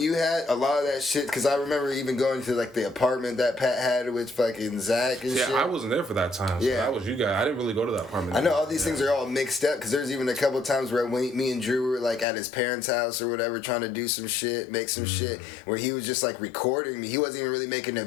you had, a lot of that shit, because I remember even going to like the apartment that Pat had with fucking Zach and shit. Yeah, I wasn't there for that time. So Yeah, that was you guys. I didn't really go to that apartment. I know all these things are all mixed up, because there's even a couple times where me and Drew were like at his parents' house or whatever, trying to do some shit, make some shit, where he was just like recording me. He wasn't even really making a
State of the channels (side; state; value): right; drops out; at 12.2 s